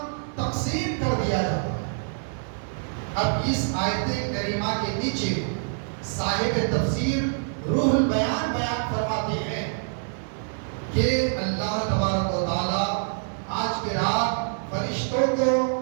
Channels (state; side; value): silent; left; 61 dB below the other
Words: تقسیم کر دیا جاتا ہے. اب اس آیت کریمہ کے نیچے صاحب تفسیر روح البیان بیان فرماتے ہیں کہ اللہ تبارک و تعالی آج کی رات فرشتوں کو